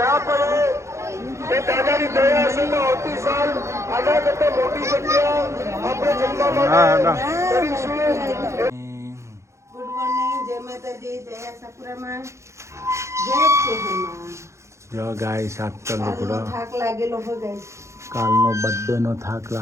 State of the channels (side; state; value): left; late; 0.14 ms